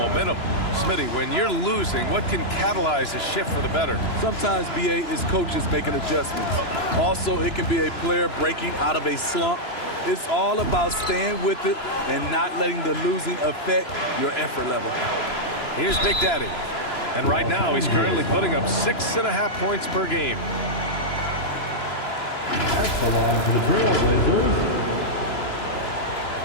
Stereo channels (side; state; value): right; late; 2.9 ms